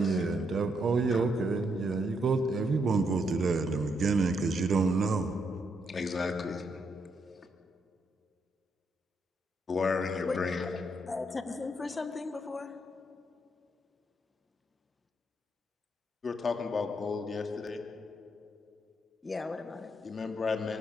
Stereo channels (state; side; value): normal; both; correlation 0.77